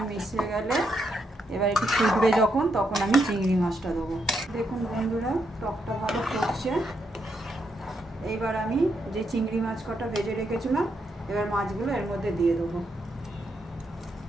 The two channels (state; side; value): normal; both; correlation 0.80